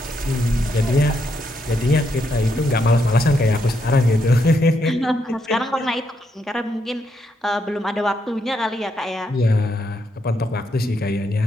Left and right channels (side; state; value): both; normal; correlation 0.78